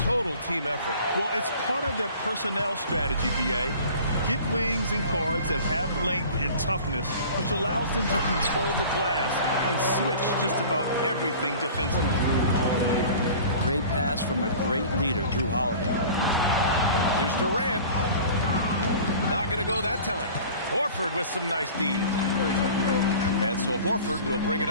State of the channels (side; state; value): both; inverted; correlation -0.43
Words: team effort. Well, it's part of their personnel strategy, B.A. Get wings and guards that have length and toughness, which allows them to control the glass and switch just about everything defensively. Great pass from a great leader, Drew Holiday. Here's Durant. Not going to go that time. Horford with some nice D. And so Horford will bring it